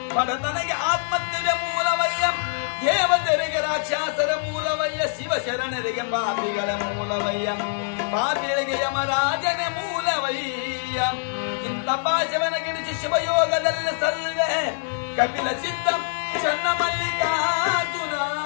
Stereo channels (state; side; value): silent; right; 62 dB below the other